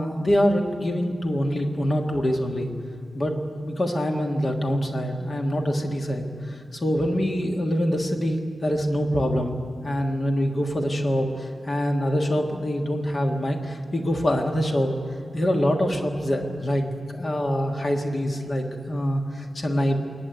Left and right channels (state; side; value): normal; both; correlation 0.94